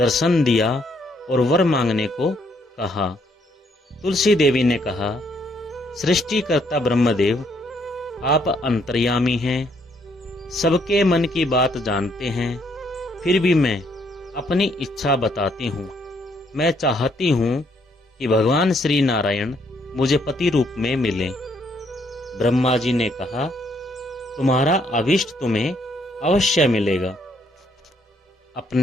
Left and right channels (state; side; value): normal; both; correlation 0.70